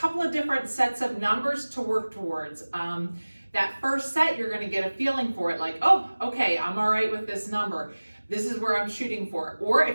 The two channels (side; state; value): both; inverted; correlation -1.00